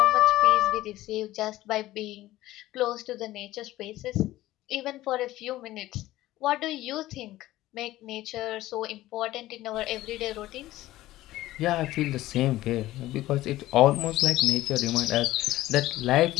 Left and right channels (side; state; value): right; quieter; 16.0 dB